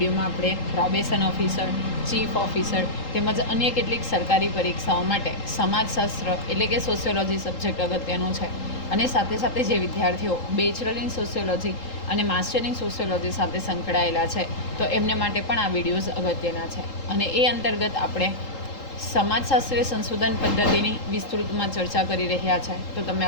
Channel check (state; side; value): late; right; 3.8 ms